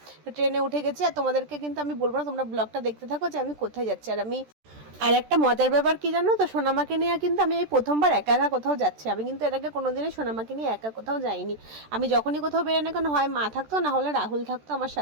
ট্রেনে উঠে গেছি, আর তোমাদেরকে কিন্তু আমি বলবো না, তোমরা ব্লগটা দেখতে থাকো যে আমি কোথায় যাচ্ছি। আর একটা মজার ব্যাপার কি জানো তো, সোনামাকে নিয়ে কিন্তু আমি এই প্রথমবার একা একা কোথাও যাচ্ছি। আমি কিন্তু এর আগে কোনোদিনই সোনামাকে নিয়ে একা কোথাও যাইনি। আমি যখনই কোথাও বেরোই না কেন, হয় মা থাকতো না হলে রাহুল থাকতো আমার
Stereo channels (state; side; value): late; left; 14 ms